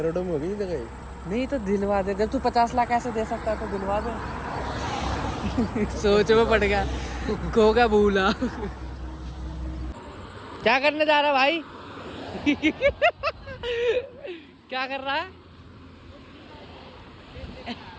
में हो गई जगह। नहीं तो दिलवा दे। जब तू 50 लाख ऐसे दे सकता है तो दिलवा दे। सोच में पड़ गया, खो गया भूला। क्या करने जा रहा भाई? क्या कर रहा है?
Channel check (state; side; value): identical; both; correlation 1.00